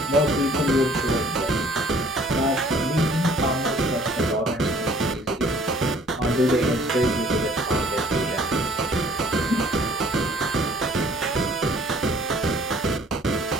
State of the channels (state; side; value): normal; both; correlation 0.56